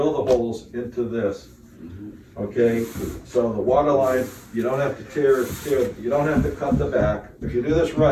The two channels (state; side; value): identical; both; correlation 1.00